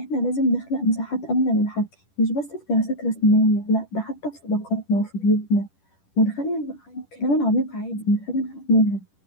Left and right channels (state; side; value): late; right; 10 ms